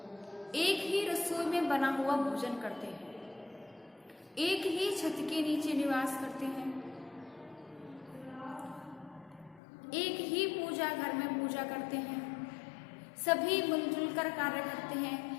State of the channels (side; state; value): right; drops out; at 9.6 s